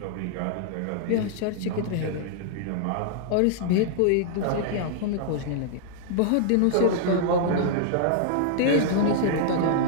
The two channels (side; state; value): both; different; correlation -0.01